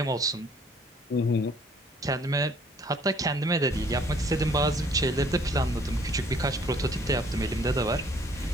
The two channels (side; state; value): both; normal; correlation 0.59